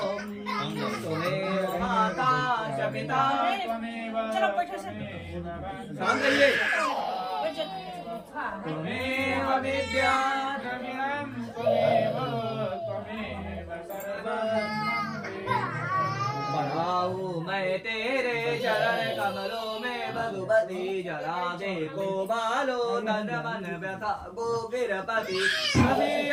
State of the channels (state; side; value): identical; both; correlation 1.00